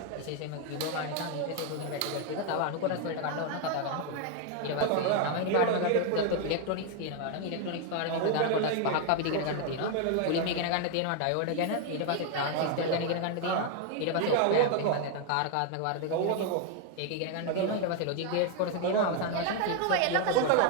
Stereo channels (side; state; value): both; different; correlation 0.01